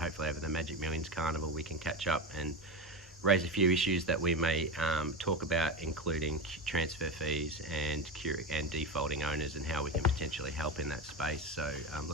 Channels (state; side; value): normal; both; correlation 0.20